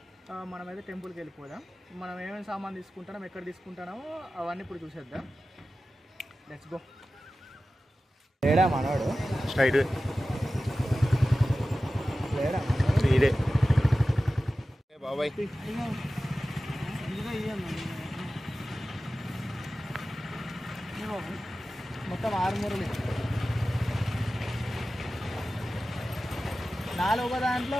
మనమైతే టెంపుల్కి వెళ్ళిపోదాం. మనం ఏమేమి సామాన్ తీసుకుంటామో, ఎక్కడ తీసుకుంటామో అవన్నీ ఇప్పుడు చూసేద్దాం. Let's go. లేడా మనోడు? స్ట్రైట్ లేడా ఇదే బాబాయ్. మొత్తం 6 మూరలు, 4 ఒక దాంట్లో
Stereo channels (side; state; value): both; normal; correlation 0.95